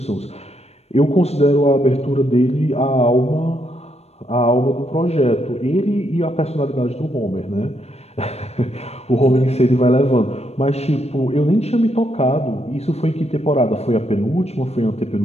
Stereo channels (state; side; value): late; right; 0.31 ms